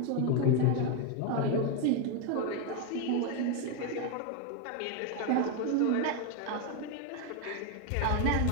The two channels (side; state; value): both; different; correlation 0.01